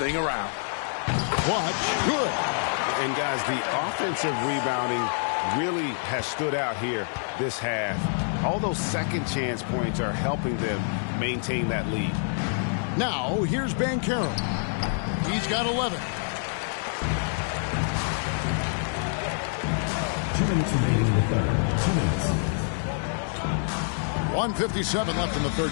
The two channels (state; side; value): silent; right; 60 dB below the other